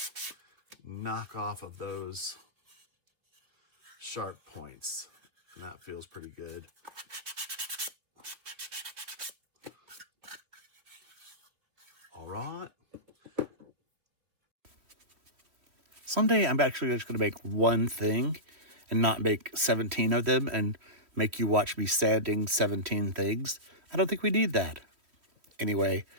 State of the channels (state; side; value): late; left; 3.1 ms